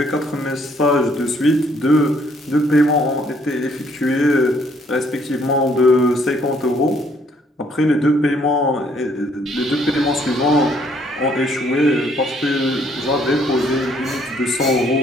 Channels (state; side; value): normal; both; correlation 0.66